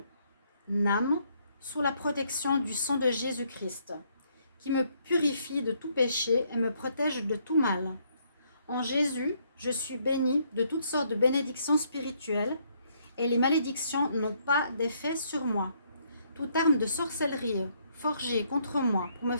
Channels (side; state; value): both; inverted; correlation -0.70